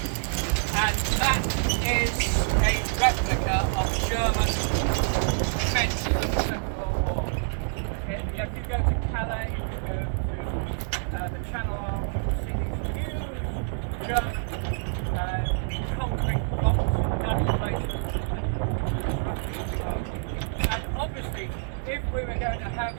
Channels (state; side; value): silent; left; digital silence